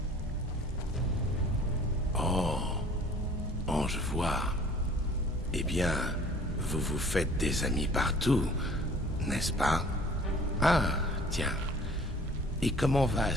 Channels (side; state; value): both; normal; correlation 0.51